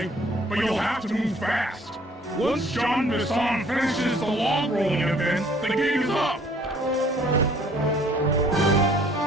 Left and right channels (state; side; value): normal; both; correlation 0.58